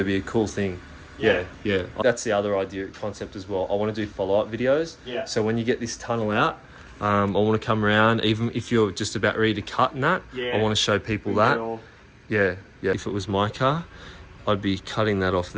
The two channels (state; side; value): identical; both; correlation 1.00